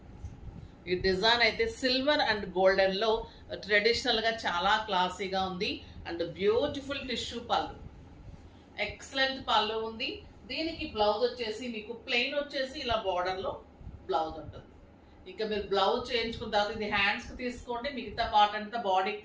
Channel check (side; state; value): both; identical; correlation 1.00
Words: ఈ డిజైన్ అయితే సిల్వర్ అండ్ గోల్డెన్ లో ట్రెడిషనల్ గా చాలా క్లాసీగా ఉంది. అండ్ బ్యూటిఫుల్ టిష్యూ పళ్ళు, ఎక్సలెంట్ పళ్ళు ఉంది. దీనికి బ్లౌజ్ వచ్చేసి మీకు ప్లెయిన్ వచ్చేసి ఇలా బార్డర్ లో బ్లౌజ్ ఉంటుంది. ఇంకా మీరు బ్లౌజ్ చేయించుకున్న తర్వాత ఇది హ్యాండ్స్ కి తీసుకోండి, మిగతా పార్ట్ అంతా బాడీకి